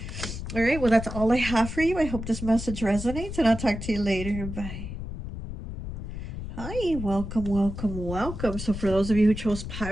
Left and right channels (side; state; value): left; noise; rumble, 7 dB below the sound